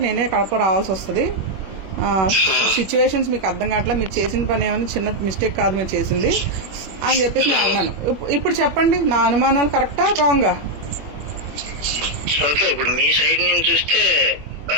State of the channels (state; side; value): late; left; 21 ms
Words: నేనే కడప రావాల్సి వస్తుంది. సిచ్యువేషన్స్ మీకు అర్థం కావట్లా, మీరు చేసిన పని ఏమైనా చిన్న మిస్టేక్ కాదు మీరు చేసింది అని చెప్పేసి నేను అన్నాను. ఇప్పుడు చెప్పండి, నా అనుమానాలు కరెక్టా రాంగా? ఓకే, ఇప్పుడు మీ సైడ్ నుంచి చూస్తే